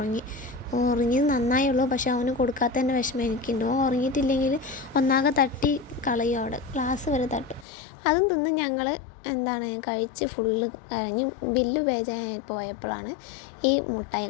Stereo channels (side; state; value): right; drops out; at 7.7 s